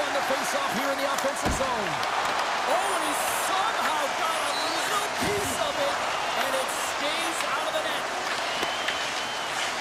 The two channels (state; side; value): identical; both; correlation 1.00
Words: the face-off here in the offensive zone. Oh, and he somehow got a little piece of it, and it stays out of the net.